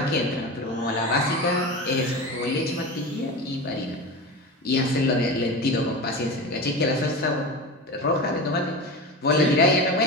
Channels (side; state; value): both; normal; correlation 0.26